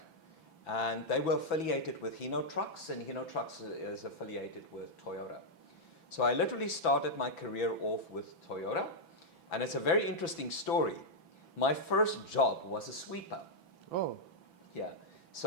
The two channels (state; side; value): late; right; 6.0 ms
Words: and they were affiliated with Hino Trucks, and Hino Trucks is affiliated with Toyota. So I literally started my career off with Toyota, and it's a very interesting story. My first job was a sweeper. Oh. Yeah.